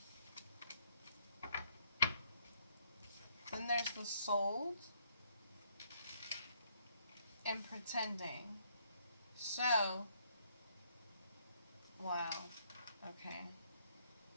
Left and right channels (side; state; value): both; inverted; correlation -0.69